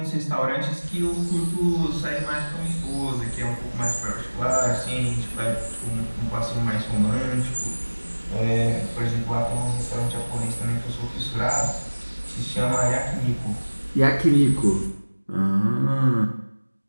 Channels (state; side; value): inverted; both; correlation -1.00